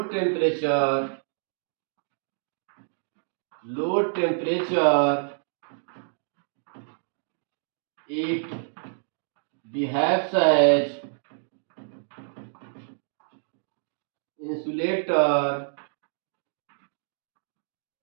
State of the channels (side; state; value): left; silent; digital silence